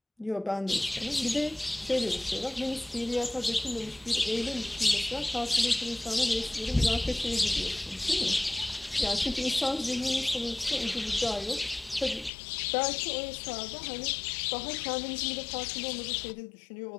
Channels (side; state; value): right; drops out; at 12.3 s